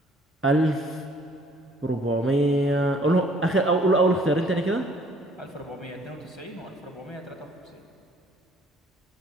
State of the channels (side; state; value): both; normal; correlation 0.59